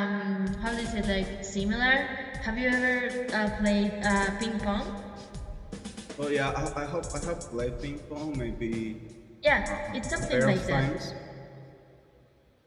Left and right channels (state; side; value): identical; both; correlation 1.00